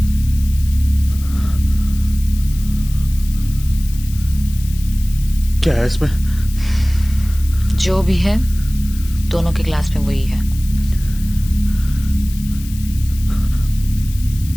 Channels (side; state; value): left; noise; hiss, 17 dB below the sound